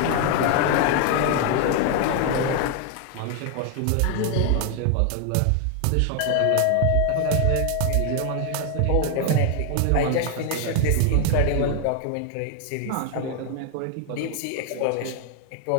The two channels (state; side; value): different; both; correlation 0.00